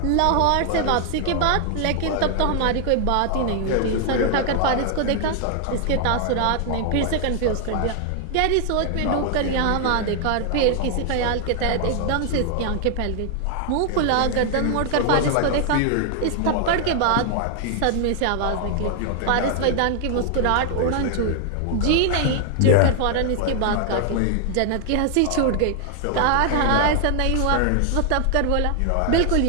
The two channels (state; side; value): different; both; correlation 0.00